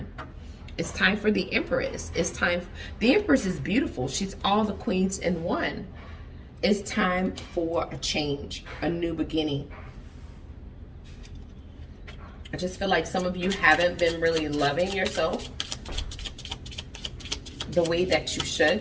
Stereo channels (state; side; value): identical; both; correlation 1.00